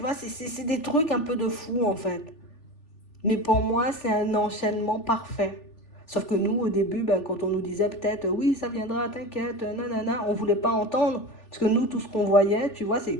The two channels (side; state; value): right; late; 3.4 ms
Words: c'est des trucs un peu de fou, en fait. Mais pour moi, c'est un enchaînement parfait. Sauf que nous, au début, ben, quand on nous disait peut-être, oui, ça viendra, t'inquiète, nanana, on ne voulait pas entendre. Parce que nous, tout ce qu'on voyait, tu vois, c'est